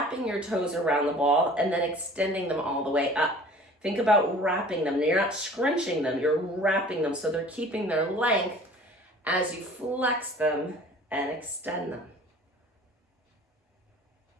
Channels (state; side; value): normal; both; correlation 0.46